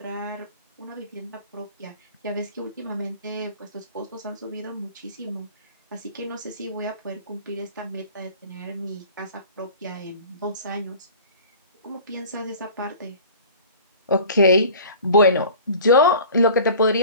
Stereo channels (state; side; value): inverted; both; correlation -0.43